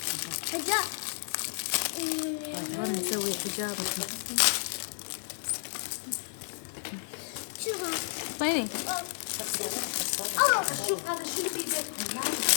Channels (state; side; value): silent; right; digital silence